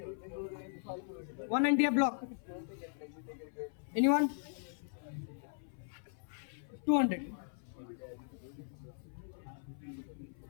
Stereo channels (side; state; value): right; silent; 52 dB below the other